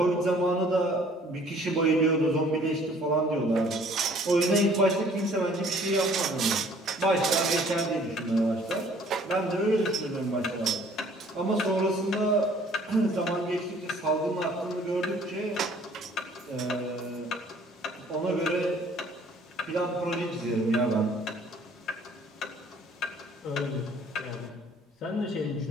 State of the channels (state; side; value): normal; both; correlation 0.56